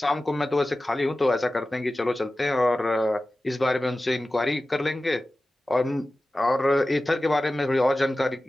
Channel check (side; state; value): both; normal; correlation 0.95